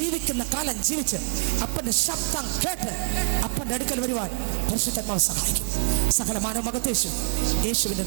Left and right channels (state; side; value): silent; left; 61 dB below the other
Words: കാലം ജീവിച്ച് അപ്പന്റെ ശബ്ദം കേട്ട് അപ്പന്റെ അടുക്കൽ വരുവാൻ പരിശുദ്ധാത്മാവ് സഹായിക്കും. സകല മാനവ മഹത്വം യേശുവിന്റെ